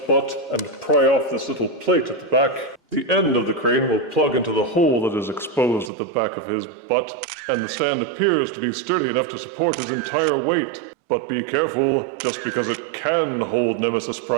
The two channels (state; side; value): drops out; left; at 5.9 s